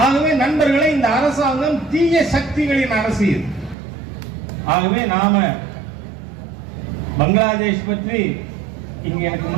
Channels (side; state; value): left; drops out; at 3.8 s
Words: ஆகவே நண்பர்களை, இந்த அரசாங்கம் தீய சக்திகளின் அரசியல். ஆகவே நாம பங்களாதேஷ் பற்றி இங்க எனக்கு